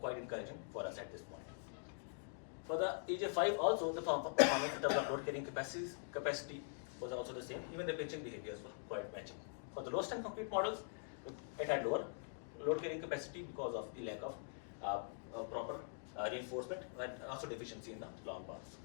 encouraging for us at this point. For the EJ5 also, the performance in terms of load carrying capacity was also the same. Even the pinching behaviors were quite matching. For the low strength concrete models, it had lower load carrying capacity because of the lack of proper reinforcement and also deficiency in the long bars.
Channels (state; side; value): silent; right; digital silence